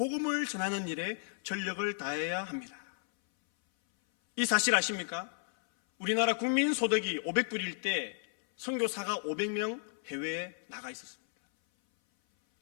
전하는 일에 전력을 다해야 합니다. 이 사실 아십니까? 우리나라 국민 소득이 500불일 때 선교사가 500명 해외에 나가 있었습니다.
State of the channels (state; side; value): silent; right; 56 dB below the other